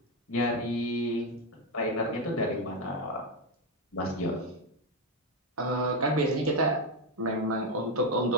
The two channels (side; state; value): both; normal; correlation 0.06